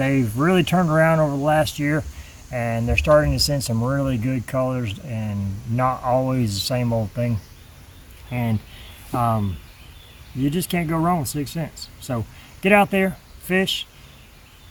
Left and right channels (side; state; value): both; identical; correlation 1.00